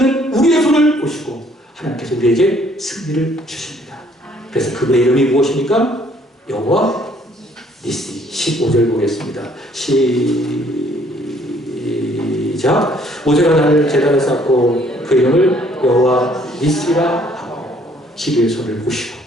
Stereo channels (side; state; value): both; normal; correlation 0.62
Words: 우리의 손을 보시고 하나님께서 우리에게 승리를 주십니다. 그래서 그분의 이름이 무엇입니까? 여호와 니시. 15절 보겠습니다. 시작. 모세가 나를 제단에 쌓고 그 이름을 여호와 니시라 하고 기도의 손을 보시고